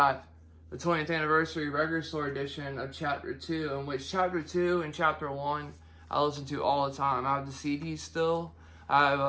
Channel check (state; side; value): identical; both; correlation 1.00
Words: the 20th anniversary record store edition of Chapter 2, in which Chapter 2 and Chapter 1 I listen to all the time. I have the CDs still. I